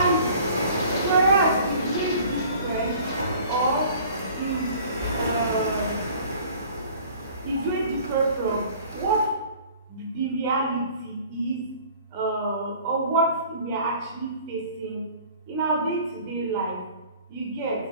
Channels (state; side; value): inverted; both; correlation -0.49